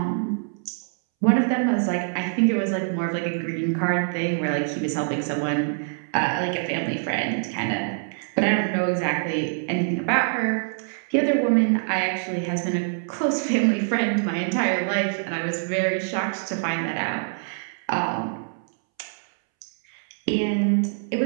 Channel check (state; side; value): silent; left; 62 dB below the other